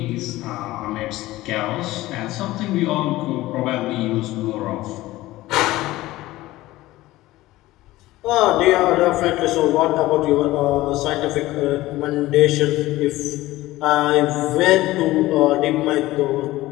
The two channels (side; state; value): right; quieter; 17.4 dB